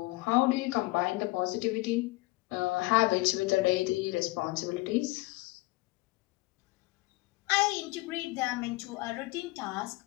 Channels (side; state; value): right; quieter; 22.0 dB